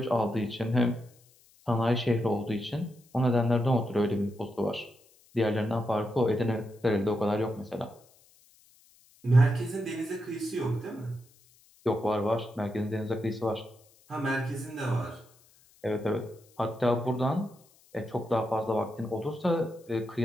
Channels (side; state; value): left; noise; hiss, 30 dB below the sound